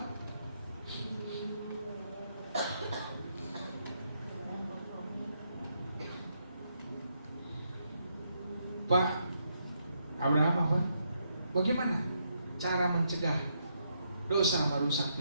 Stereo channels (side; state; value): both; inverted; correlation -0.78